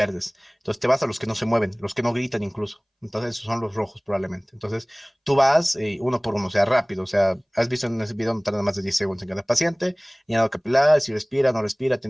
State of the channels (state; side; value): identical; both; correlation 1.00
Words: Entonces te vas a los que no se mueven, los que no gritan incluso. Entonces esos son los rojos probablemente. Entonces tú vas uno por uno, o sea, rápido. O sea, has visto en ese video no tarda más de 10 segundos en cada paciente. Llenado capilar, si respira, no respira,